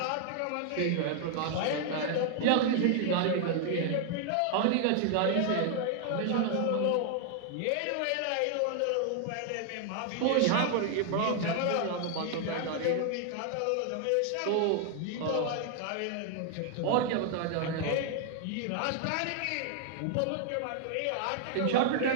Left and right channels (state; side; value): different; both; correlation 0.00